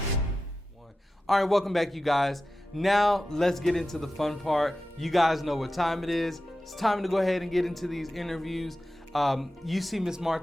All right, welcome back, you guys. Now let's get into the fun part. You guys know what time it is. It's time to go ahead and get into these interviews. You see Miss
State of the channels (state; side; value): normal; both; correlation 0.93